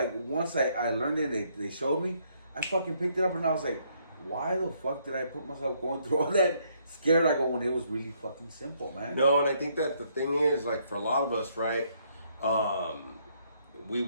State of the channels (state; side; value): inverted; both; correlation -0.70